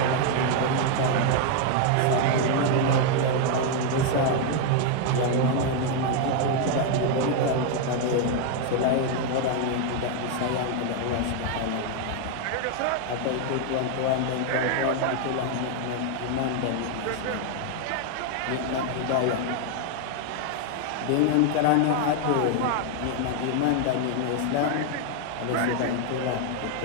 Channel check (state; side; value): different; both; correlation 0.00